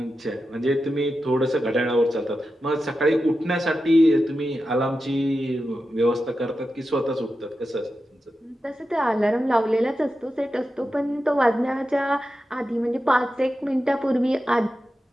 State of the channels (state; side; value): normal; both; correlation 0.91